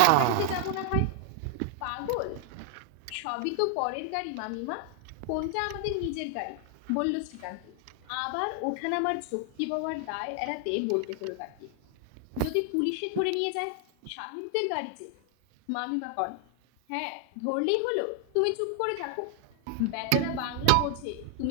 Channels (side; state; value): both; different; correlation 0.00